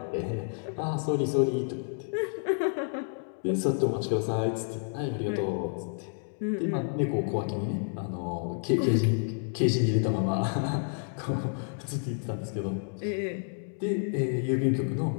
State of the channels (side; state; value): right; silent; 58 dB below the other